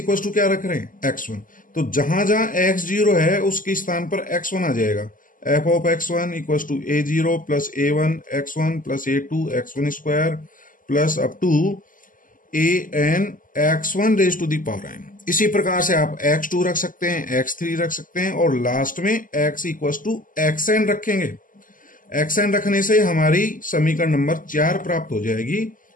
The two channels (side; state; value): right; late; 0.39 ms